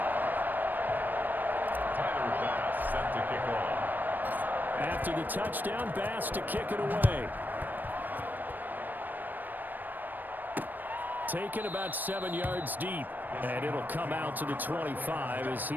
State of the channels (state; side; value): late; left; 0.089 ms